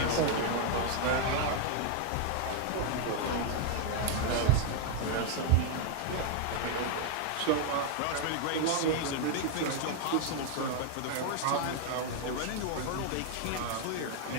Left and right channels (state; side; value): different; both; correlation 0.00